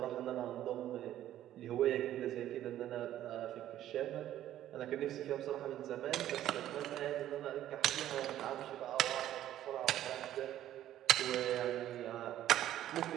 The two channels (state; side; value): quieter; left; 12.5 dB